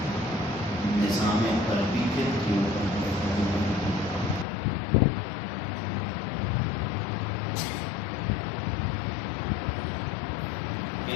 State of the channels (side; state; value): right; drops out; at 4.5 s